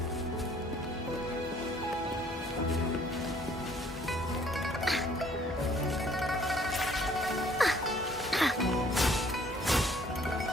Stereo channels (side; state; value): both; normal; correlation 0.59